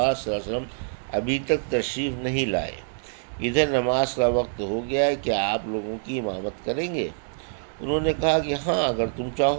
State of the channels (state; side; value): silent; left; digital silence